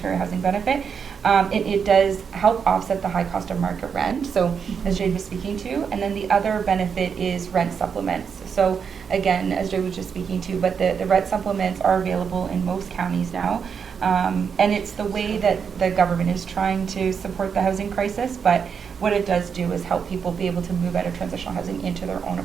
Housing Benefit. It does help offset the high cost of market rent, so as Jade was speaking to. And then the other benefit is rent supplements. So again, as Jade was just speaking to, but the rent supplements are available in most counties now. And it's the way that the government is trying to support the housing crisis, but what it does do is help people be able to move out of transitional housing into their own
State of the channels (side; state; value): left; quieter; 6.6 dB